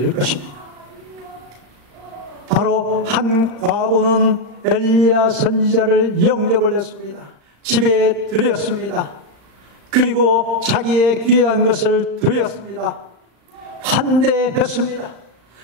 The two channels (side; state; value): left; late; 35 ms